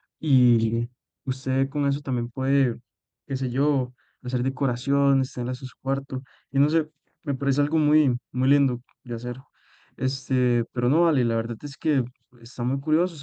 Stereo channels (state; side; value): identical; both; correlation 1.00